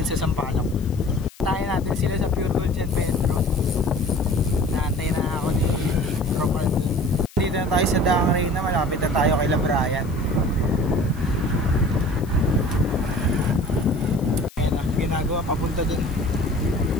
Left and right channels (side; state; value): left; noise; hiss, 23 dB below the sound